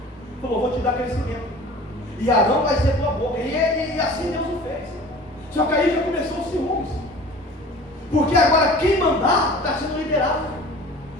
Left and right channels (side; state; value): both; normal; correlation 0.43